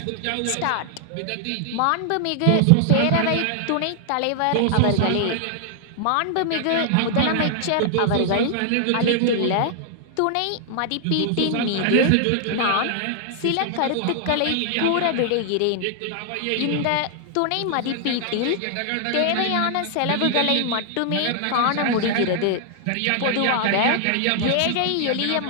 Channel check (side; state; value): both; different; correlation 0.00